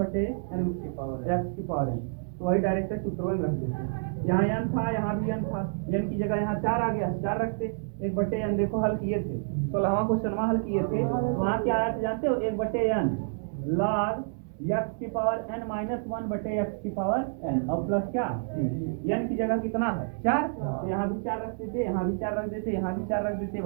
x की पावर x की पावर n, वही डायरेक्ट सूत्रों में रख देते। यहाँ n था, यहाँ भी n था, n की जगह यहाँ 4 आ गया, 4 रखते। 1/n देखो हल किए थे, 16वां क्वेश्चन हल किए थे, वहाँ क्या आया था जानते हो? 1/n log x की पावर n माइनस 1 बटे x की पावर n और प्लस क्या c। n की जगह कितना है 4, तो यहाँ भी 4 रख देते, यहाँ भी 4 रख देते, यहाँ भी 4 रख देते,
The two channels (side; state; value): left; silent; digital silence